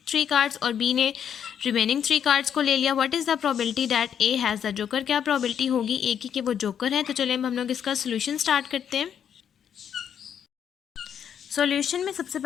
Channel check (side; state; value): right; quieter; 8.5 dB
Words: 3 cards, और बी ने रिमेनिंग 3 कार्ड्स को ले लिया। What is the probability that A has the joker, क्या प्रोबेबिलिटी होगी ए की कि वो जोकर है। तो चलिए हम लोग इसका सोल्यूशन स्टार्ट करते हैं। सॉल्यूशन में सबसे